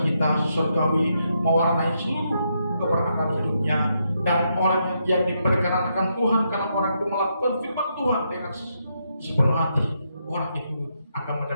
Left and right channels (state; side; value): inverted; both; correlation -0.80